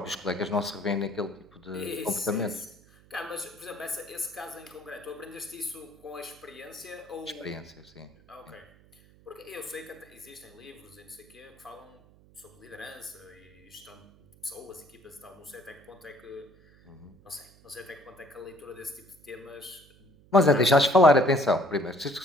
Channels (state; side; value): noise; right; hum, 26 dB below the sound